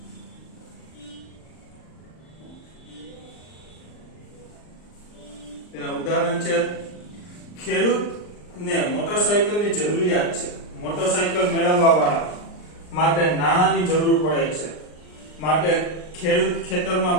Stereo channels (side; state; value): right; late; 39 ms